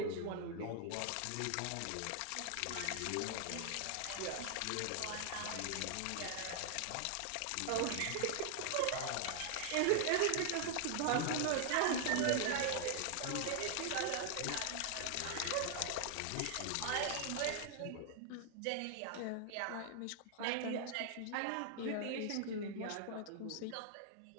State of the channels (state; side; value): different; both; correlation 0.00